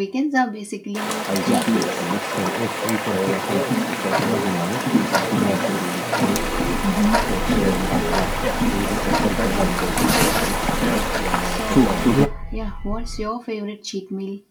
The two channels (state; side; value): identical; both; correlation 1.00